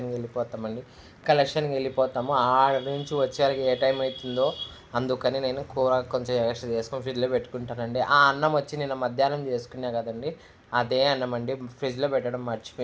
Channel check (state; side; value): identical; both; correlation 1.00